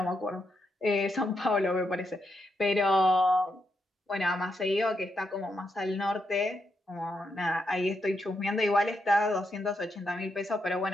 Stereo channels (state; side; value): normal; both; correlation 0.81